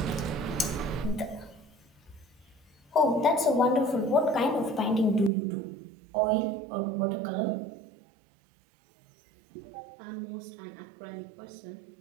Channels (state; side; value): drops out; left; at 5.3 s